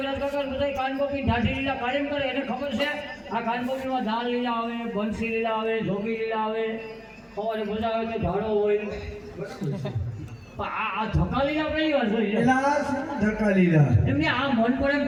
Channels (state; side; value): identical; both; correlation 1.00